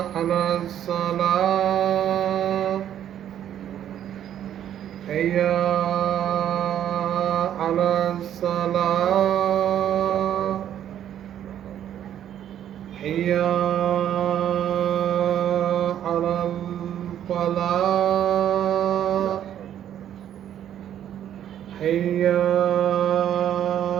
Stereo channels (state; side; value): quieter; left; 10.5 dB